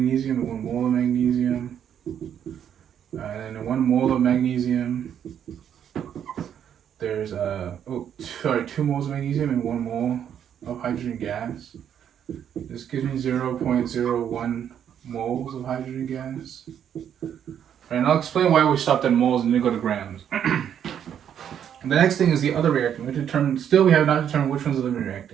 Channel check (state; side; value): quieter; left; 9.1 dB